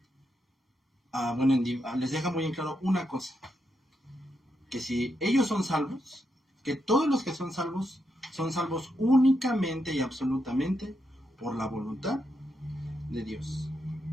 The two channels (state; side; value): normal; both; correlation 0.82